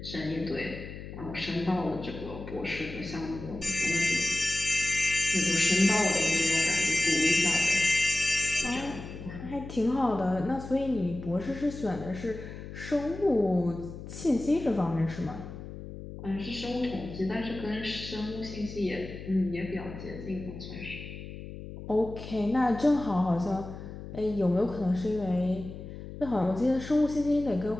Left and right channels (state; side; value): noise; left; hum, 11 dB below the sound